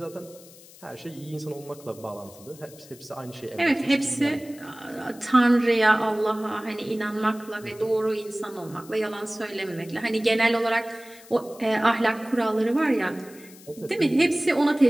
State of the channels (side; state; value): left; noise; hiss, 21 dB below the sound